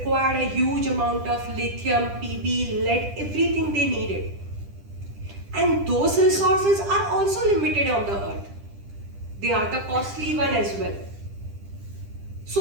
a huge amount of lithium, PB, lead, everything they needed. And those resources are also limited on the earth. They are the costly one as well.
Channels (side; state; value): left; late; 10 ms